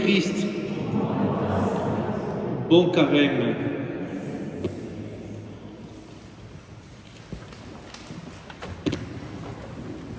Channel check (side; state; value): both; identical; correlation 1.00